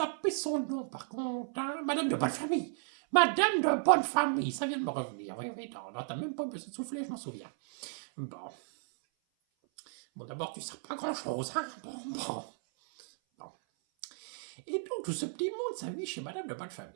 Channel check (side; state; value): left; silent; 55 dB below the other